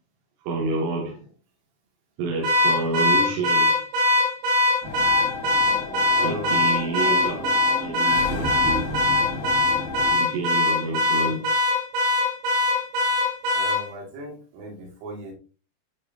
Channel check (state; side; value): late; left; 27 ms